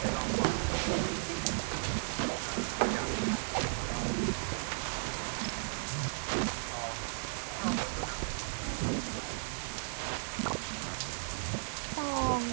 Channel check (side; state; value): left; silent; 54 dB below the other